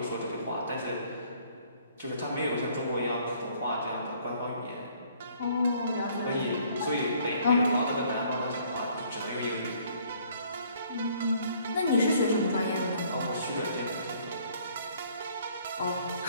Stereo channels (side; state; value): both; inverted; correlation -0.61